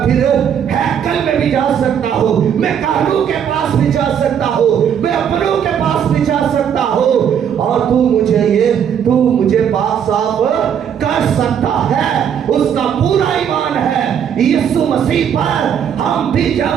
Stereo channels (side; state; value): left; quieter; 8.4 dB